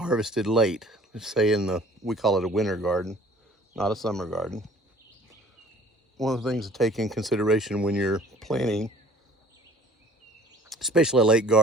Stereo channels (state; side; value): normal; both; correlation 0.51